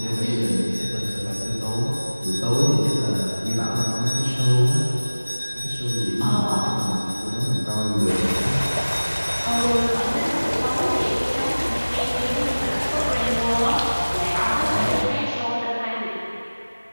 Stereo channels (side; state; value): both; inverted; correlation -1.00